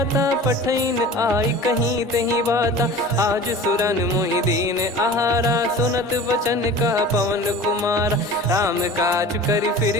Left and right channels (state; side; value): normal; both; correlation 0.39